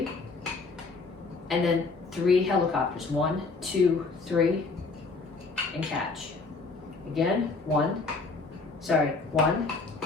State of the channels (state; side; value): quieter; right; 4.0 dB